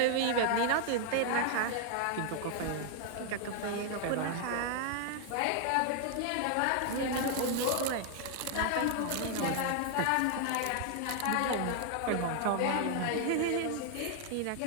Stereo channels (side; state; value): both; different; correlation 0.00